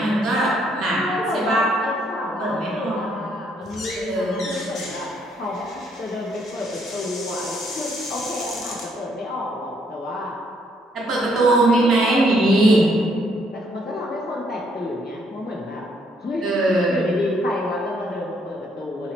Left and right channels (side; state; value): both; normal; correlation 0.70